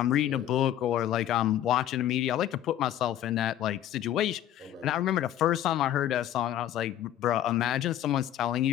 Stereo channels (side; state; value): right; quieter; 11.6 dB